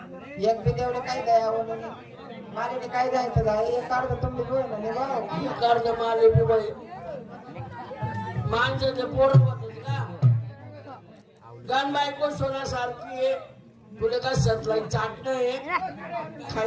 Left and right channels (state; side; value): identical; both; correlation 1.00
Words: एक बी देवडे काय दया म्हणून मारे काय जायचं जाय एक काढतो तुम्ही बोल ना निघा कर्ज माले बी बाई माणसाचे पोरं होते का गण बायको सोन्यासारखी आहे तुला का सतलाई चाटणं आहे